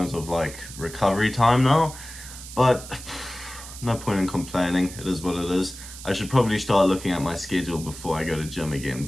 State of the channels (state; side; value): noise; right; hiss, 13 dB below the sound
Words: of like recovery time now, but no point in complaining. It is what it is. I should probably start looking at my schedule before I go to gym again,